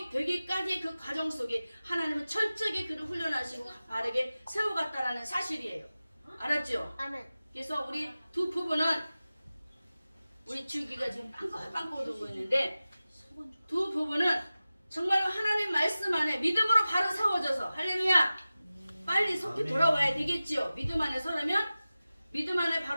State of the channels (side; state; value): both; inverted; correlation -0.96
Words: 그 과정 속에 하나님은 철저하게 그를 훈련하시고 바르게 세워갔다라는 사실이에요. 알았죠? 아멘. 그래서 우리 두 부부는 우리 주기가 지금 빵긋빵긋 오고 있는데 두 부부는 정말로 하나님 말씀 안에 믿음으로 바로 세워져서 할렐루야 빨리 속히 돌아와야 되겠지요. 믿음 안에 서려면 믿음 안에